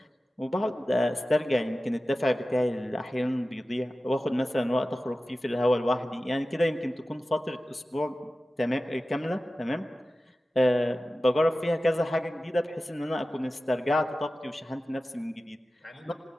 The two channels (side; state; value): both; normal; correlation 0.95